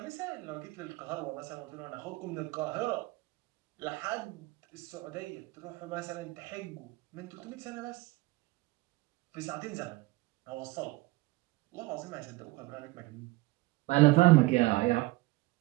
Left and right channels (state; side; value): quieter; left; 21.2 dB